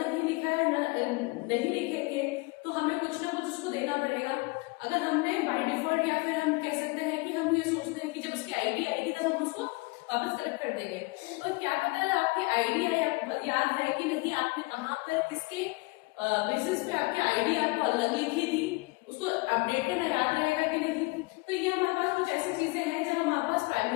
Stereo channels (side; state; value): right; quieter; 25.9 dB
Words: नहीं लिखा है, नहीं लिखेंगे तो हमें कुछ ना कुछ उसको देना पड़ेगा। अगर हमने बाय डिफॉल्ट, या फिर हम कह सकते हैं कि हम ये सोचते हैं कि जब उसकी आईडी आएगी तब हम उसको वापस कलेक्ट कर देंगे, तो क्या पता है आपकी आईडी है, याद है कि नहीं, आपने कहाँ पर किसके बेसिस पे आपकी आईडी आपको अलग लिखी थी, उसको अपडेट करना याद रहेगा कि नहीं। तो ये हमारे पास कुछ ऐसी चीजें हैं जब हम हमारे पास